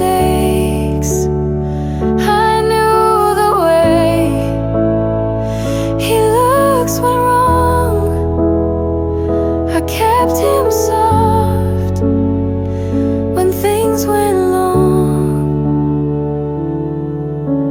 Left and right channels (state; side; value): identical; both; correlation 1.00